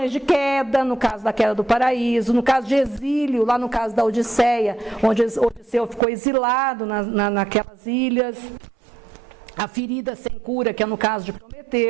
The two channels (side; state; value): left; drops out; at 6.0 s